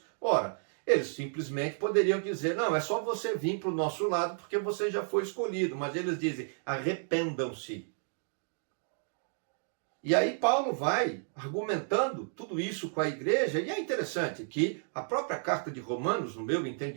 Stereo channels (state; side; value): silent; left; digital silence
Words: Ora, Eles simplesmente poderiam dizer, não, é só você vir para o nosso lado porque você já foi escolhido. Mas eles dizem, arrependam-se. E aí Paulo vai argumentando tudo isso com a igreja, e é interessante que a própria carta de Romanos, no meu